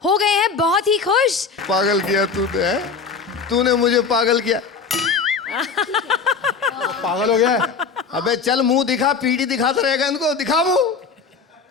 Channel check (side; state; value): right; quieter; 5.4 dB